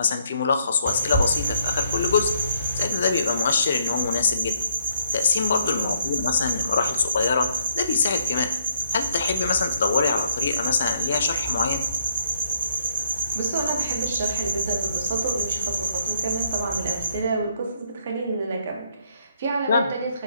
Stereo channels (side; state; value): both; inverted; correlation -0.71